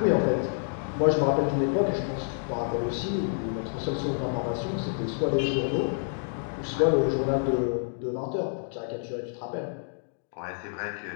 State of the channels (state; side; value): silent; right; 59 dB below the other